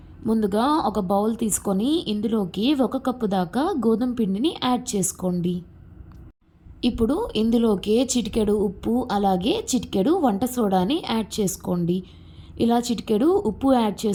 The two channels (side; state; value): both; identical; correlation 1.00